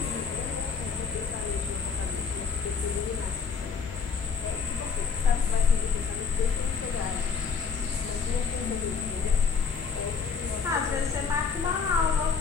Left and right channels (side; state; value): right; quieter; 5.6 dB